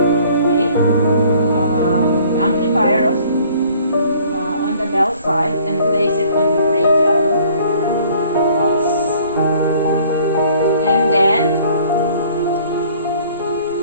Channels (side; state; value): both; inverted; correlation -0.56